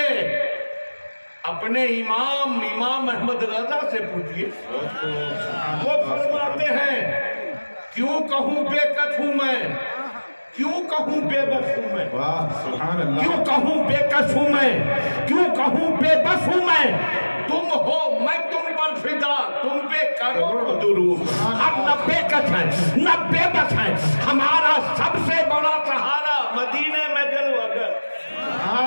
اپنے امام احمد رضا سے پوچھئے، وہ فرماتے ہیں کیوں کہوں بے کس ہوں میں، کیوں کہوں بے بس ہوں میں، واہ، سبحان اللہ۔ کیوں کہوں بے کس ہوں میں، کیوں کہوں بے بس ہوں میں، تم ہو میں تم پر فدا، تم پہ کروڑ درود۔ ہم نہ بے کس ہیں نہ بے بس ہیں، ہمارا سب سے بڑا سہارا مدینے میں جلوہ گر۔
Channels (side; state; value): both; inverted; correlation -1.00